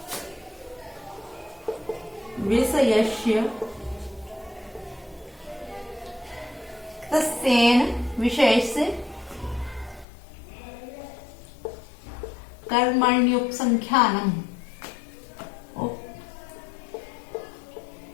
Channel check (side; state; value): right; drops out; at 10.1 s